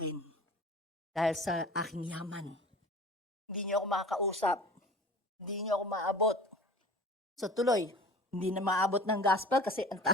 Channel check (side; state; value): both; normal; correlation 0.41